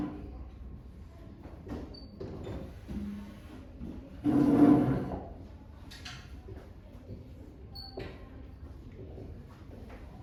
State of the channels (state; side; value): identical; both; correlation 1.00